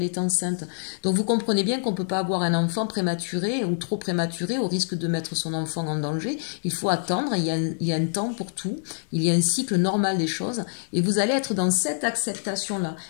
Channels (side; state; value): right; silent; digital silence